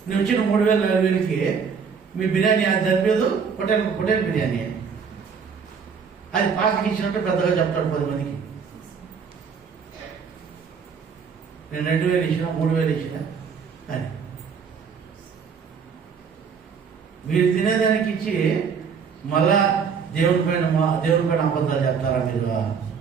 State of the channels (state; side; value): quieter; left; 6.2 dB